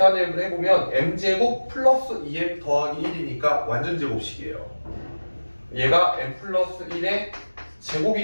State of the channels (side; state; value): both; inverted; correlation -1.00